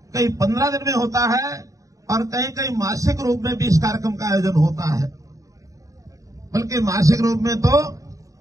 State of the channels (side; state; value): left; late; 0.16 ms